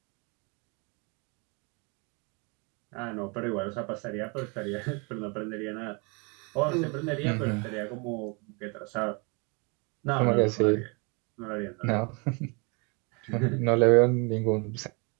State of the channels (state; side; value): quieter; left; 31.7 dB